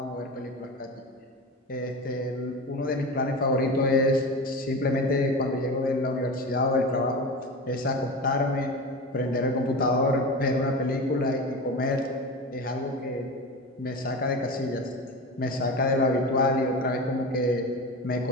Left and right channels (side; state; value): both; normal; correlation 0.28